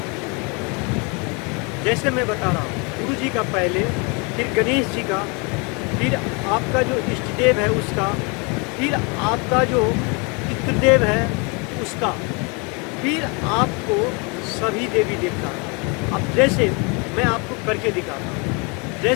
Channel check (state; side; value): quieter; right; 31.5 dB